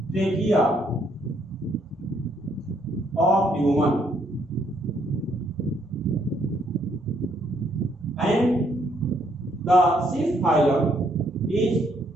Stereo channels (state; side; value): normal; both; correlation 0.70